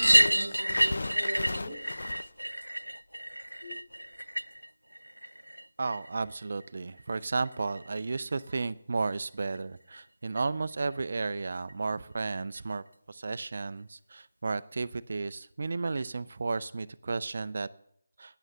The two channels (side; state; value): both; inverted; correlation -0.98